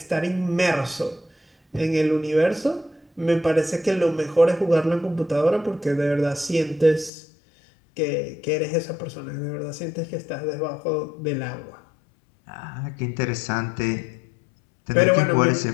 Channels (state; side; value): drops out; right; at 7.1 s